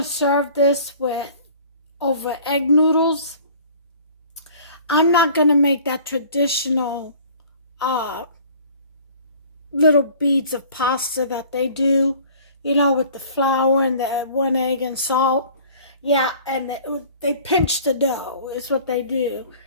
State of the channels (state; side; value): inverted; both; correlation -0.49